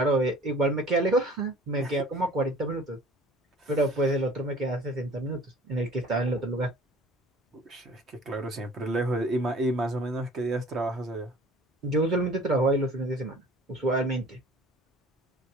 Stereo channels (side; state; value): both; normal; correlation 0.48